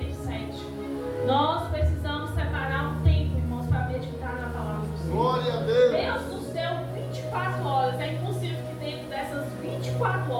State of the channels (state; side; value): identical; both; correlation 1.00